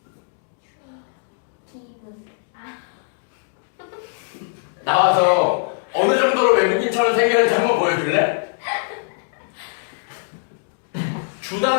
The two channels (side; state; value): right; silent; digital silence